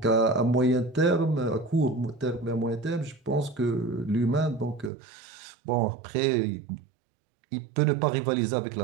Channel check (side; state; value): left; drops out; at 4.9 s